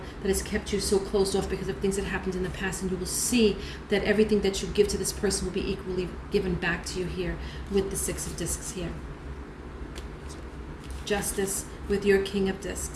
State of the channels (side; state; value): both; identical; correlation 1.00